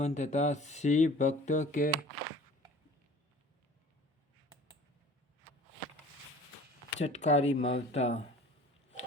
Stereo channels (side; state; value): both; normal; correlation 0.45